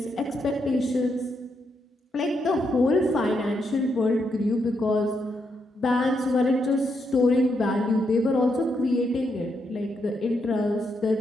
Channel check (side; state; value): both; normal; correlation 0.80